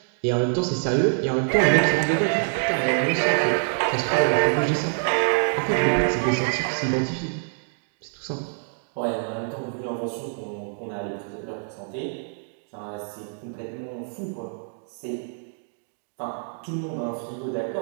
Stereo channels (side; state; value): left; silent; digital silence